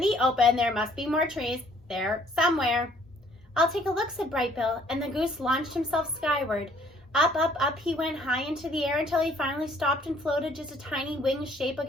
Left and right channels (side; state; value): both; normal; correlation 0.60